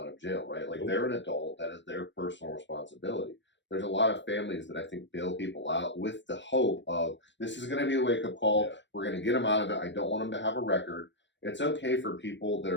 of jail, right? Like they're an adult, that is their personal responsibility. There's a lot of families that I think bail people out with the hope of, this is going to be a wake-up call. Yeah. We're going to get them out of it. I don't want them to have a record. It's okay for people that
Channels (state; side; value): late; right; 0.53 ms